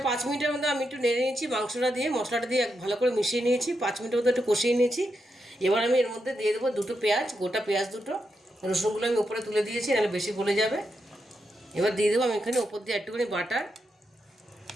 5 মিনিটের মধ্যে আমি একটু নেড়ে নিয়েছি, মাংসটা দিয়ে মশলাটা দিয়ে ভালো করে মিশিয়ে নিয়েছি, 5 মিনিটের মধ্যে একটু কষিয়ে নিয়েছি। এবার আমি এর মধ্যে দিয়ে দেবো 2টো পেঁয়াজ, গোটা পেঁয়াজ 2টো, রসুনগুলো আমি উপরে তুলে দিয়েছি, নাহলে বেশি গলে যাবে। এবার দিয়ে দেবো আমি এখানে উপর দিয়ে একটুখানি বাটার,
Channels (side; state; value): both; normal; correlation 0.84